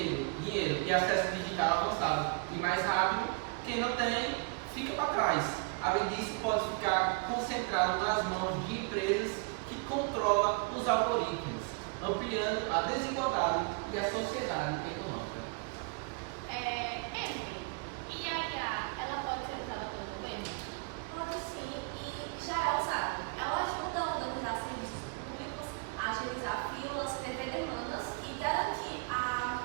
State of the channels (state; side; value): quieter; left; 33.9 dB